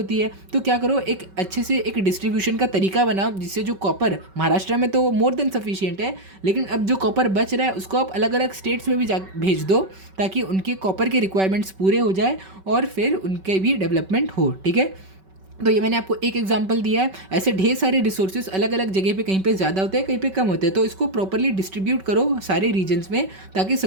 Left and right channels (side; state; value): left; late; 5.3 ms